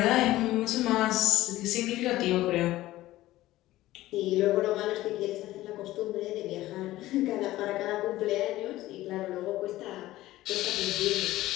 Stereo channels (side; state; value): right; quieter; 16.2 dB